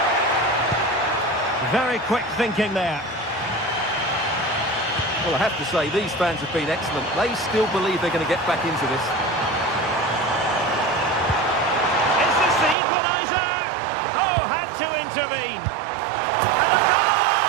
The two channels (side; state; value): left; drops out; at 12.8 s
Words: Very quick thinking there. Well, I have to say, these fans have been excellent. They still believe they're going to get back into this. Is this the equaliser? Oh, had to intervene. And a